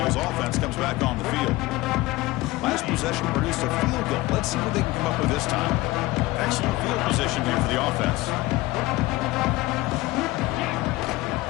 offense comes back on the field. Last possession produced a field goal. Let's see what they can come up with this time. Excellent field position here for the offense.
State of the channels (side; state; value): right; quieter; 19.4 dB